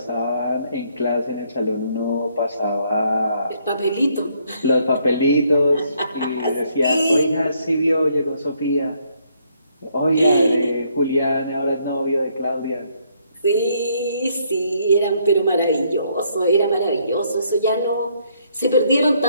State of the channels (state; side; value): inverted; both; correlation -0.70